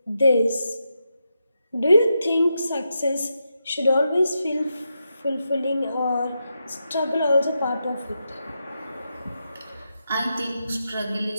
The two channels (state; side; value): inverted; both; correlation -0.86